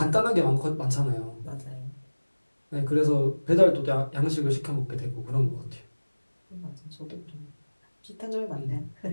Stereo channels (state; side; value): inverted; both; correlation -1.00